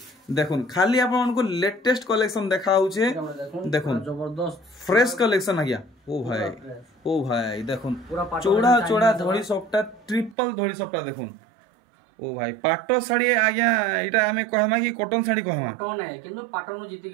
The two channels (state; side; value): drops out; left; at 10.4 s